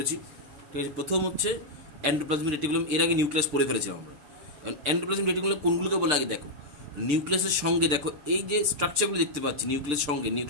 ঠিক আছে, প্রথম হচ্ছে এন্ডোপ্লাজমিক রেটিকুলাম। এর আগে নিউক্লিয়াস পড়ে ফেলেছিলাম আমরা। এন্ডোপ্লাজমিক রেটিকুলাম কোনগুলোকে বলে আগে দেখো। নিউক্লিয়াসের সঙ্গে দেখো এই যে স্ট্রাকচারগুলো দেখতে পাচ্ছি, নিউক্লিয়াসের সঙ্গে,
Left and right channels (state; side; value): late; left; 6.7 ms